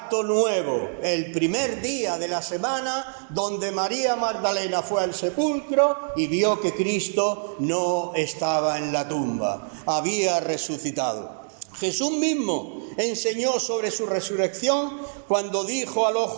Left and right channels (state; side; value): silent; left; digital silence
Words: nuevo, el primer día de la semana, donde María Magdalena fue al sepulcro y vio que Cristo no estaba en la tumba, había resucitado. Jesús mismo enseñó sobre su resurrección cuando dijo a los